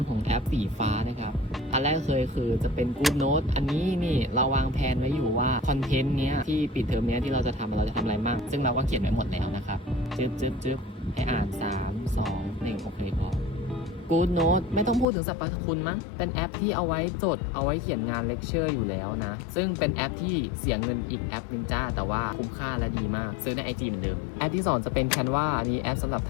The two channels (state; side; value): drops out; right; at 15.1 s